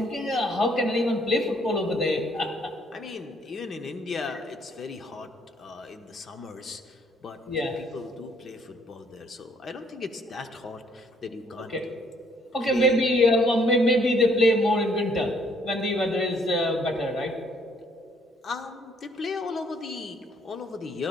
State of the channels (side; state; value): both; normal; correlation 0.66